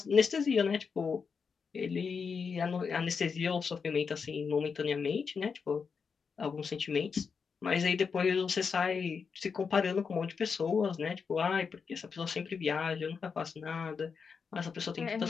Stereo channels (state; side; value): quieter; right; 5.7 dB